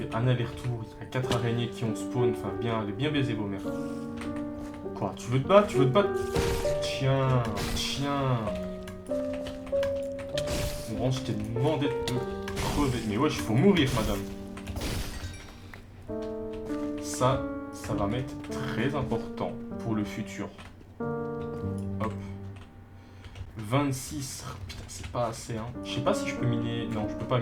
un aller-retour, il y a 4 araignées qui ont spawn, enfin bien, allez bien baiser vos mères. Quoi, tu veux te battre? Tu veux te battre? Tiens, tiens. Bon, je t'ai demandé de te crever. Mais wesh, faut mourir, madame. Ça va m'être très important pour le futur. Hop. 26. Putain, c'est pas assez, hein. Je sais pas si je peux miner... Non, je peux pas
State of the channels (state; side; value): identical; both; correlation 1.00